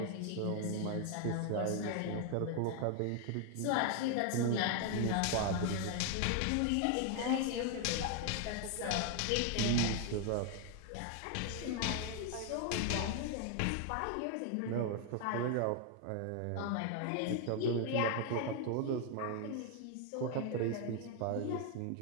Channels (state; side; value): different; both; correlation 0.00